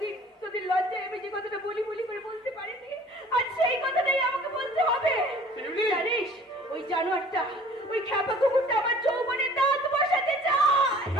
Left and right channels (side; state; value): both; normal; correlation 0.50